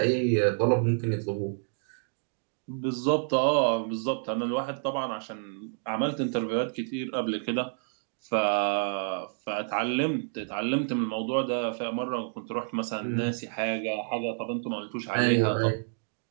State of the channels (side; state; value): left; silent; digital silence